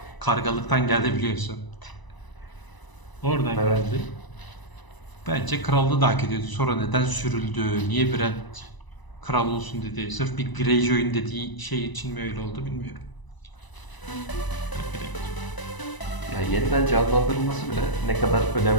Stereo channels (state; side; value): late; right; 1.0 ms